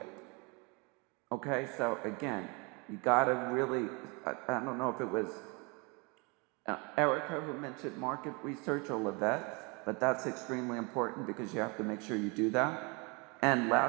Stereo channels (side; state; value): left; quieter; 29.8 dB